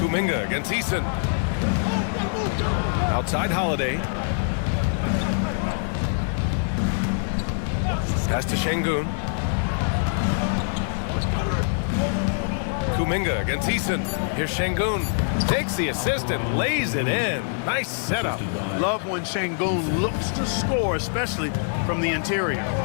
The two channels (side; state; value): right; silent; 62 dB below the other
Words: against Eason. Outside Holiday. Pass to Şengün. Kuminga against Eason. Here's Şengün. Takes the assist and lays it in. Nice setup. Love when Şengün looks to score, especially from the interior.